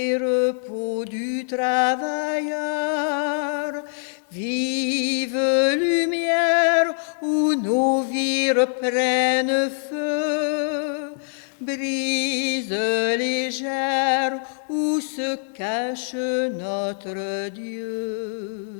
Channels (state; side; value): silent; right; digital silence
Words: repos du travailleur, vive lumière où nos vies reprennent feu, brise légère où se cache notre Dieu.